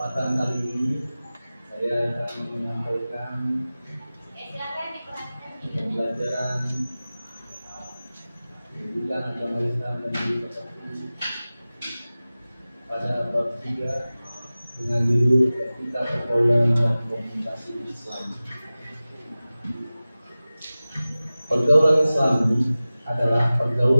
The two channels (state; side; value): inverted; both; correlation -0.97